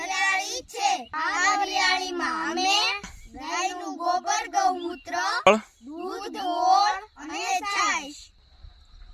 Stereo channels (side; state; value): both; identical; correlation 1.00